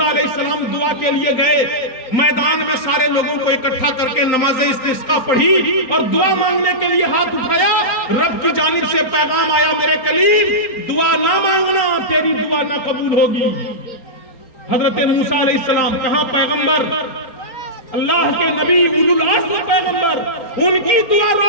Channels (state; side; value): late; right; 4.3 ms